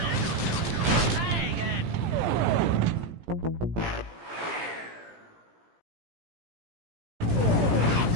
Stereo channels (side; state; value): left; late; 17 ms